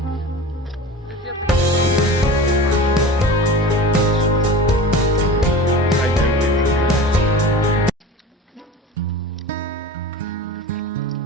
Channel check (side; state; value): both; normal; correlation 0.34